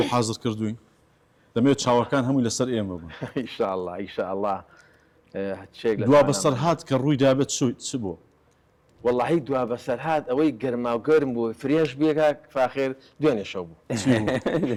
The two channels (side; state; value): both; identical; correlation 1.00